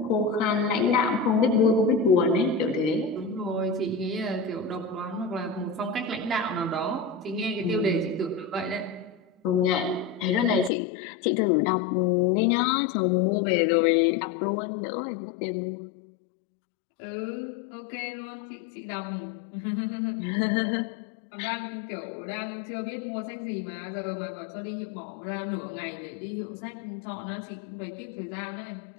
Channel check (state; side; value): drops out; right; at 10.7 s